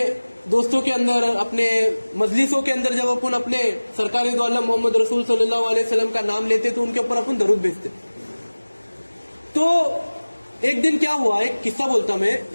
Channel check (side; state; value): both; inverted; correlation -1.00